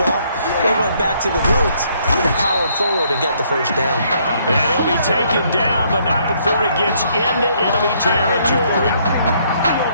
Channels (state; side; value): inverted; both; correlation -0.68